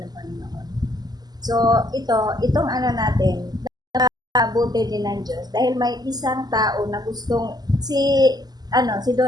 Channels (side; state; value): left; late; 0.20 ms